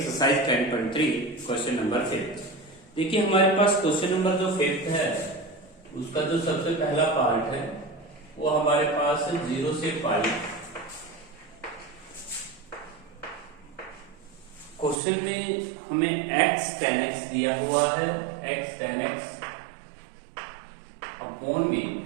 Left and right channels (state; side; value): drops out; left; at 15.0 s